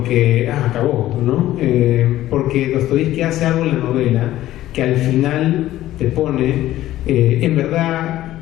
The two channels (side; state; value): right; quieter; 14.4 dB